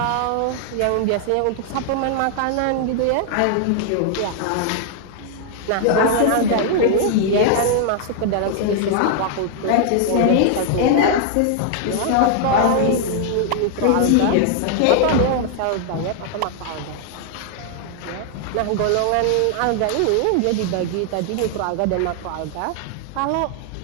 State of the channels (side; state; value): both; different; correlation 0.00